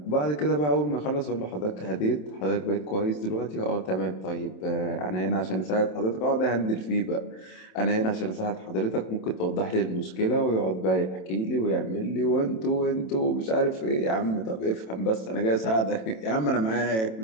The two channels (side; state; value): right; late; 27 ms